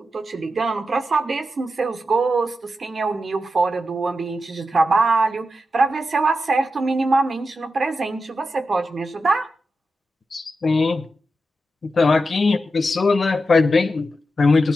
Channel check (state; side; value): normal; both; correlation 0.89